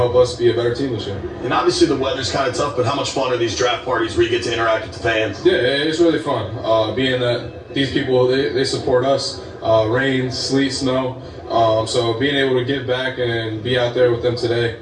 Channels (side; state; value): both; identical; correlation 1.00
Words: us be a better team this year. And obviously the weather's kind of tough, but how much fun are these draft parties where you get to interact with the fans? Yeah, it's really fun. Being that these people, they support us, rain, sleet, snow. So being able to give back and be out there with them today,